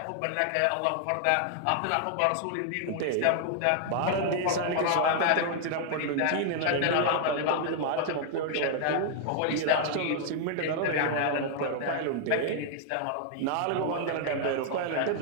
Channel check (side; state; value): both; different; correlation 0.00